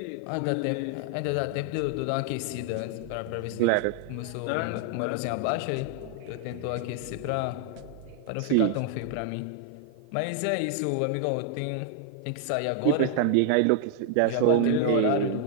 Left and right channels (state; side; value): different; both; correlation 0.00